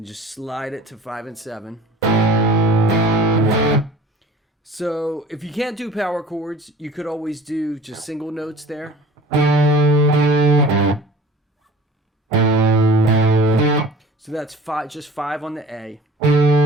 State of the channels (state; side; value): normal; both; correlation 0.44